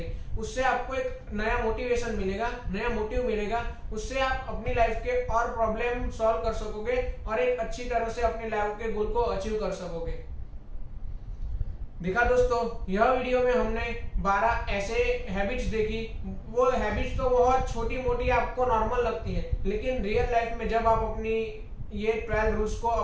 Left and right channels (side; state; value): both; identical; correlation 1.00